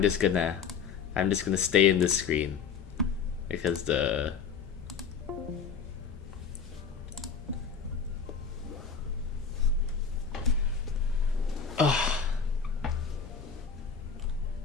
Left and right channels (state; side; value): quieter; right; 6.3 dB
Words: just gonna stay in this screen because the